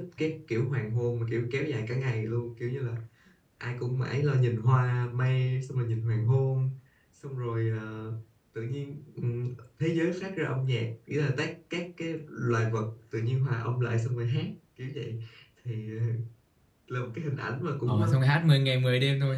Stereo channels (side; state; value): both; identical; correlation 1.00